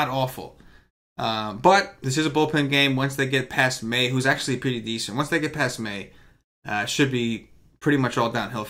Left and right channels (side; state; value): both; identical; correlation 1.00